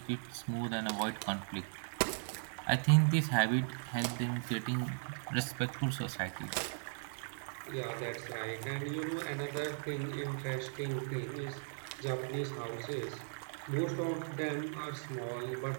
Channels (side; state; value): left; silent; 53 dB below the other